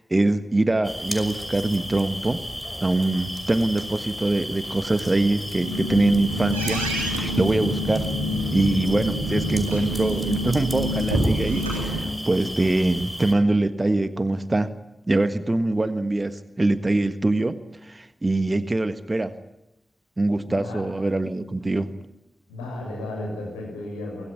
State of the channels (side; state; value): both; normal; correlation 0.92